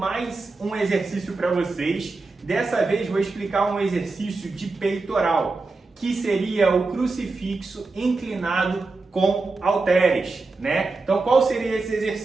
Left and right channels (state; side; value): quieter; left; 3.7 dB